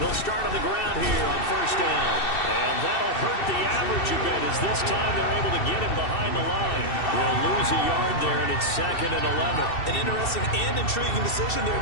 start on the ground here on 1st down. And that'll hurt the average a bit as this time they're able to get him behind the line. They'll lose a yard there, and it's 2nd and 11. An interesting and intriguing decision there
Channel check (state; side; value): late; right; 2.7 ms